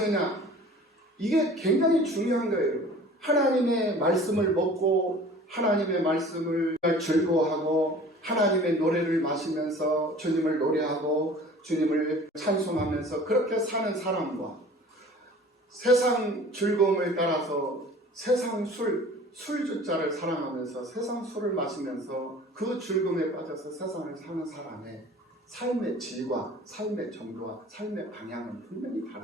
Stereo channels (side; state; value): both; normal; correlation 0.45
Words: 이게 굉장히 중요한 거예요. 하나님의 말씀을 먹고 하나님의 말씀을 즐거워하고 하나님의 노래를 마시면서 주님을 노래하고 주님을 찬송하면서 그렇게 사는 사람과 세상 즐거움을 따라서 세상 술주자를 사랑하면서 세상 술을 마시면서 그 즐거움에 빠져서 세상을 사는 사람의 삶의 질과 삶의 정도와 삶의 방향은 분명히